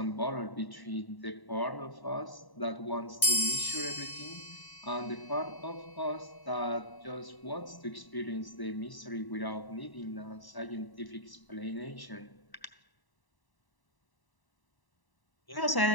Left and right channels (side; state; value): right; late; 1.0 ms